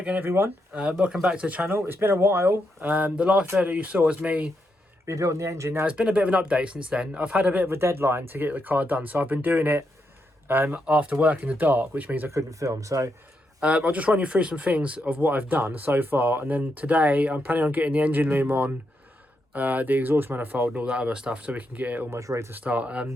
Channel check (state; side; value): normal; both; correlation 0.82